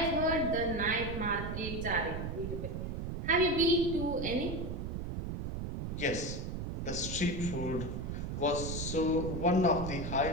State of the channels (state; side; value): noise; right; rumble, 4 dB below the sound